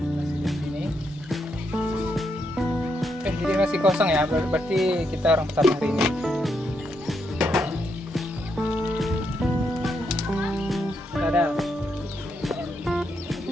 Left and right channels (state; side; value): normal; both; correlation 0.80